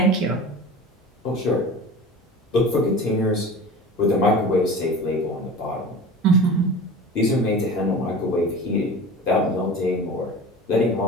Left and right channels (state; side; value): normal; both; correlation 0.35